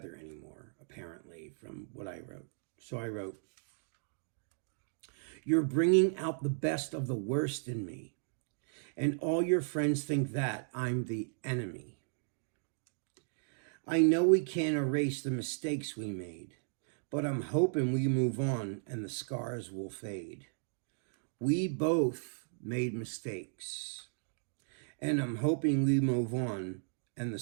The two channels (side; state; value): left; silent; digital silence